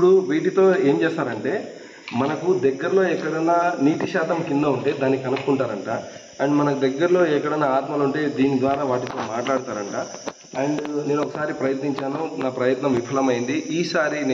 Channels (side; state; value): both; identical; correlation 1.00